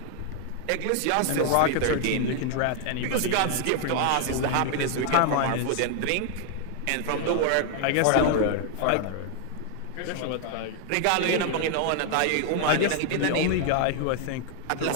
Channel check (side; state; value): both; different; correlation 0.00